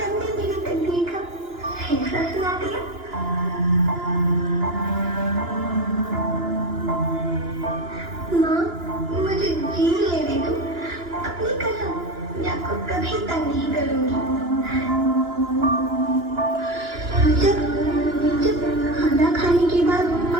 मेरी तकदीर का फैसला सुना दिया। माँ, मुझे जी लेने दो। अपनी कसम, मैं आपको कभी तंग नहीं करूंगी। जब जब खाना खाने के बाद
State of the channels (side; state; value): left; late; 2.9 ms